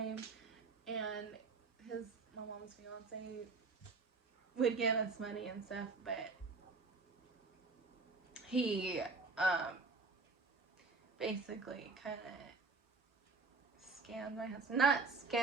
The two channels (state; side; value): quieter; left; 4.1 dB